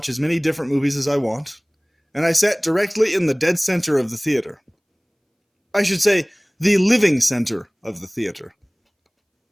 as many different movies as I want, and I sat directly in the dead center of the theater. I should say, the living center of the theater.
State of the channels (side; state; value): both; identical; correlation 1.00